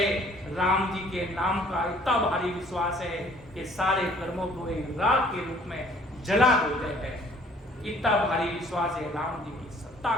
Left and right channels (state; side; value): normal; both; correlation 0.57